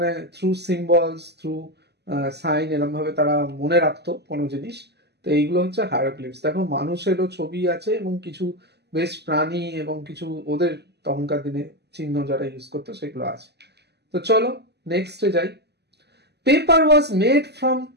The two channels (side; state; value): left; late; 0.49 ms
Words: থ্রু সিম্বলস, থ্রু সাইন, এরম ভাবে তারা মনে রাখতো কোনো জিনিস। তো এইগুলো হচ্ছে হায়ারোগ্লিপস। দেখো মানুষেরও ছবি আছে এবং কিছু বেশ প্রাণী এবং কিছু ওদের তখনকার দিনে চিহ্ন যারা ইউজ করতো সেগুলো আছে। তো চলো নেক্সটে যাই। Paper was made from